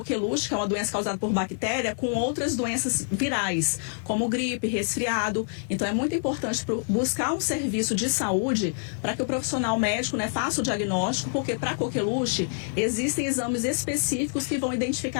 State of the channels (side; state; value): right; silent; 60 dB below the other